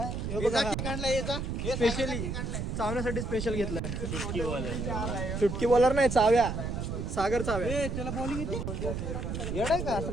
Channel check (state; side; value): noise; right; rumble, 3 dB below the sound